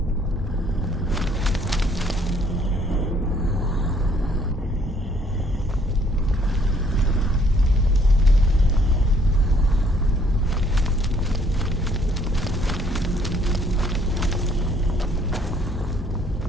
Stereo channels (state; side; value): normal; both; correlation 0.64